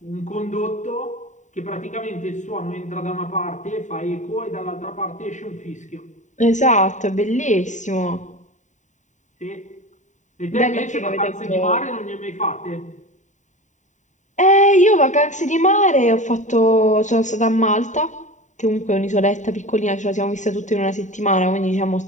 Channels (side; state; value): right; late; 0.35 ms